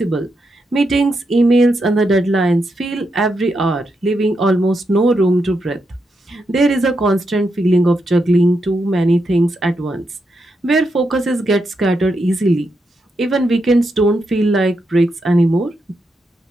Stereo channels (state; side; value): normal; both; correlation 0.83